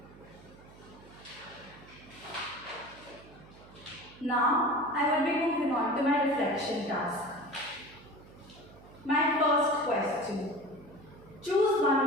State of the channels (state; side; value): noise; right; hum, 21 dB below the sound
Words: Now, I will be moving on to my reflection task. My first question. Choose one